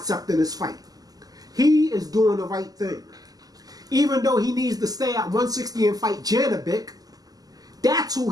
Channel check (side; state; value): left; late; 0.18 ms